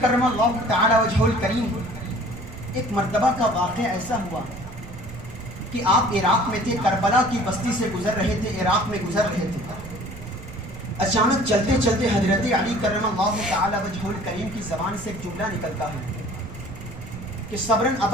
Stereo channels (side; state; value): right; noise; rumble, 14 dB below the sound